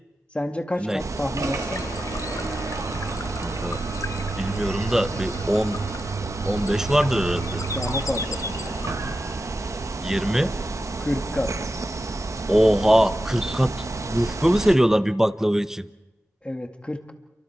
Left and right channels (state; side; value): normal; both; correlation 0.92